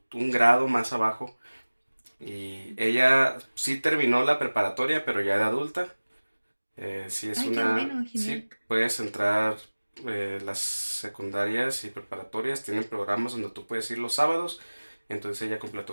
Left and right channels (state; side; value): inverted; both; correlation -1.00